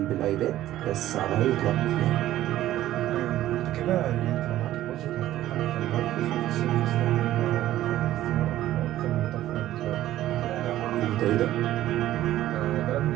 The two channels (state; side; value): quieter; left; 13.9 dB